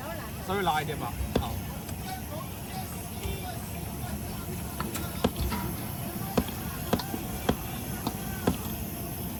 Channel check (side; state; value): both; identical; correlation 1.00